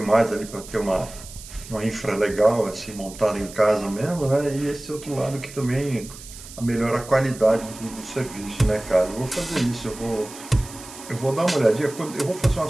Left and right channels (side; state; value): right; noise; hiss, 16 dB below the sound